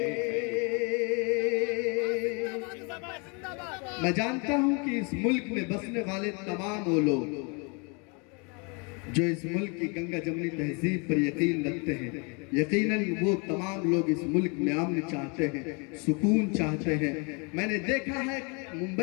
मैं जानता हूं कि इस मुल्क में बसने वाले तमाम वो लोग जो इस मुल्क की गंगा जमनी तहजीब पर यकीन रखते हैं, यकीनन वो तमाम लोग इस मुल्क में अमन चाहते हैं, सुकून चाहते हैं। मैंने देखा है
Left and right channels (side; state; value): right; quieter; 32.9 dB